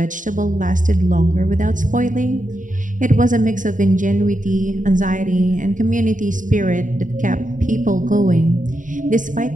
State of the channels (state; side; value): late; left; 0.38 ms